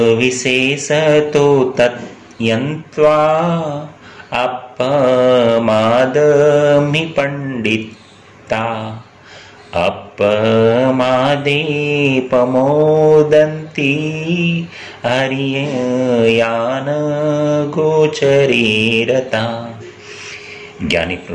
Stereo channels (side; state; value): both; identical; correlation 1.00